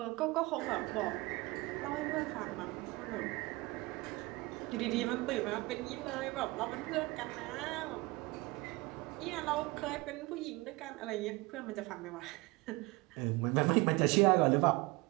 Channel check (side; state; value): left; quieter; 22.7 dB